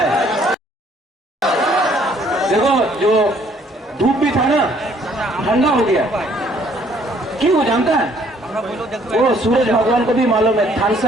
देखो जो धूप भी था ना, ठंडा हो गया। क्यों हो जानता है? वो सूरज भगवान को भी मालूम है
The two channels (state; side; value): normal; both; correlation 0.62